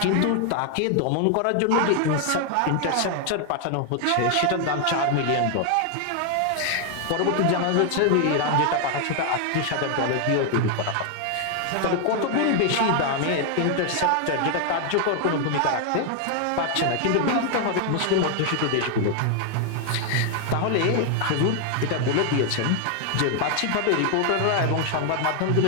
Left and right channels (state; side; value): different; both; correlation 0.00